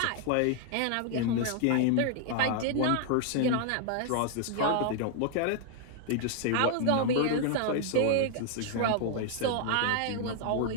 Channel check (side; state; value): both; different; correlation 0.00